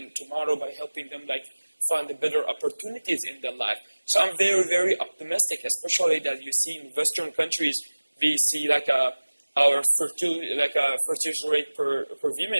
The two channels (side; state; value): both; inverted; correlation -1.00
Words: tomorrow by helping them like find the better opportunities in their life. So I'm very, very optimistic, especially that you see in Western countries, we see like our fertility rate per